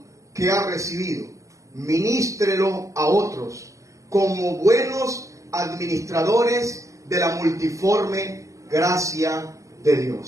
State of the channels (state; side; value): late; left; 0.16 ms